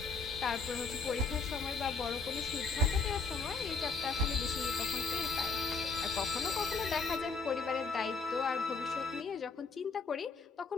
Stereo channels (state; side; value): quieter; right; 4.3 dB